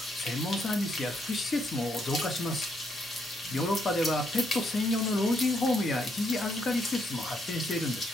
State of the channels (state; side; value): normal; both; correlation 0.75